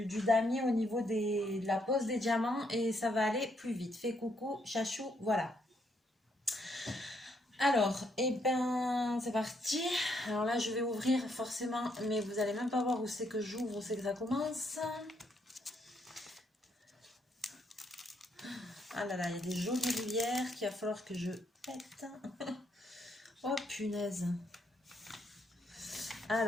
damier au niveau de la pose des diamants et ça va aller plus vite. Fais coucou, chachou, voilà. Alors, c'est parti. Alors là, je vais ouvrir forcément, mais vous allez même pas voir où c'est que j'ouvre, où c'est que ça commence. Ah là là, il y a des jolies rivières qu'il va falloir que je pète. Oh punaise.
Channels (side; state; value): both; normal; correlation 0.74